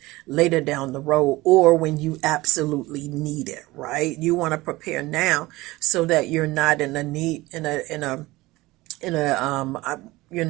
later down the road or when you absolutely need it, right? You want to prepare now so that you're not you're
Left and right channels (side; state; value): left; quieter; 19.9 dB